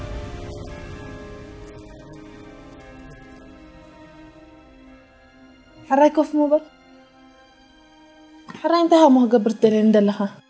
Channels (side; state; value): both; identical; correlation 1.00